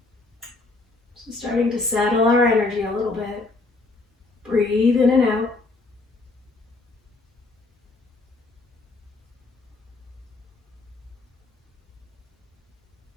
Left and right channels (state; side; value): quieter; right; 3.4 dB